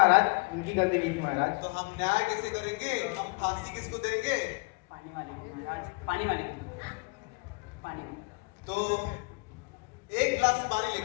उनकी गलती नहीं थी महाराज। तो हम न्याय कैसे करेंगे? हम फांसी किसको देंगे? पानी वाले को महाराज, पानी वाले को। पानी को। तो एक गिलास पानी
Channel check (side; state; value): right; quieter; 31.0 dB